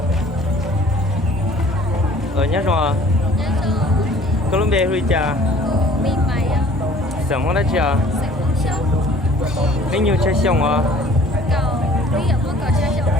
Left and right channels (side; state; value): both; normal; correlation 0.52